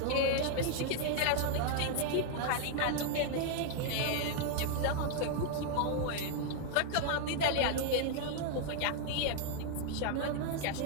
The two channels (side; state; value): both; different; correlation 0.00